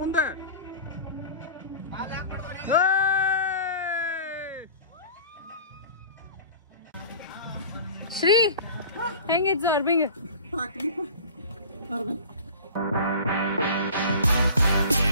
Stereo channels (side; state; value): both; inverted; correlation -0.40